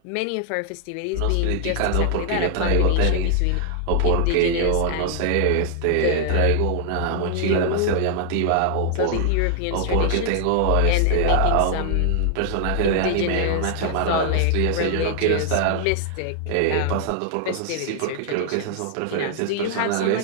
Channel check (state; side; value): different; both; correlation 0.00